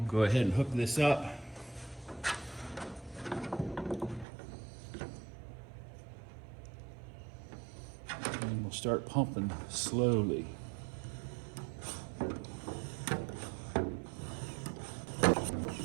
go ahead and hook this up. And we'll start pumping slowly.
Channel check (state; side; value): drops out; left; at 4.2 s